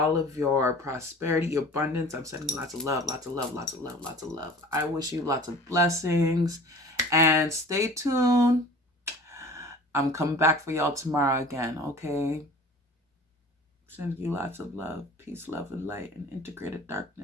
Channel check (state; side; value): normal; both; correlation 0.43